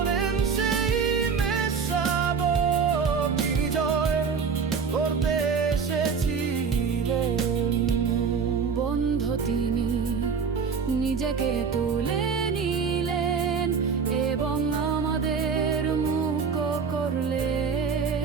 সেই মেষশাবক, যিনি জয় করতে এসেছিলেন। বন্ধ তিনি নিজেকে তুলে নিলেন এবং আমাদের মুক্ত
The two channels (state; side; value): quieter; left; 5.8 dB